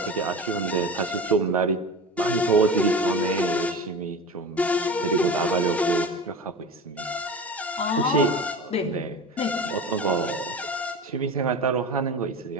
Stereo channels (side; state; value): both; normal; correlation 0.31